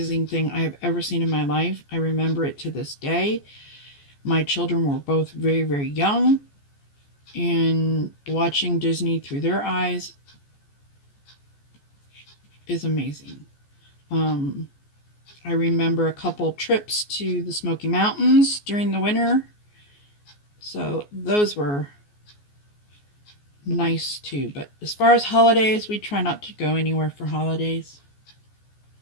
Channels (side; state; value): right; late; 14 ms